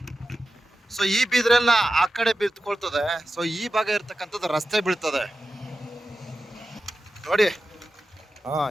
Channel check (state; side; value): normal; both; correlation 0.93